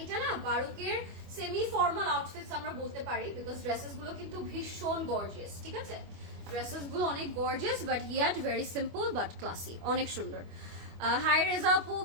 এটা না বারুকের সেমি ফর্মাল আউটফিটস আমরা বলতে পারি, বিকজ ড্রেসেস গুলো কিন্তু ভীষণ গর্জিয়াস, ঠিক আছে, ড্রেসেস গুলো অনেক gorgeous but yacht very simple but classy, অনেক সুন্দর। হাই রেজা আপু,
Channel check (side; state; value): left; late; 25 ms